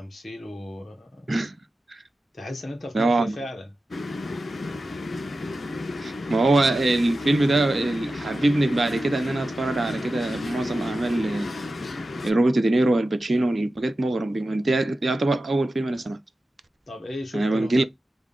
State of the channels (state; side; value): normal; both; correlation 0.94